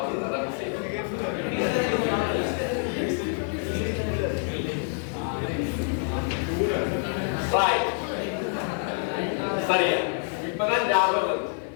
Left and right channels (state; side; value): silent; right; 56 dB below the other